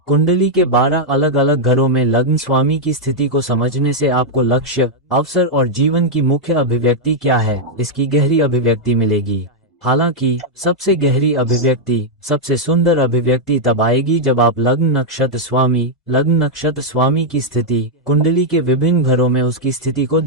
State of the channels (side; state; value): both; normal; correlation -0.03